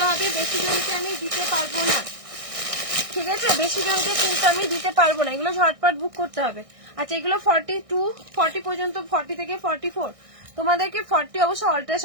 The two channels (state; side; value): late; left; 1.6 ms